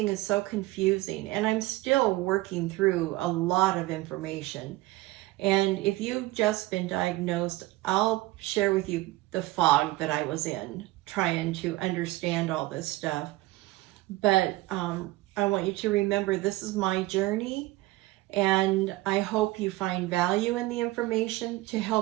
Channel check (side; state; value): left; quieter; 18.8 dB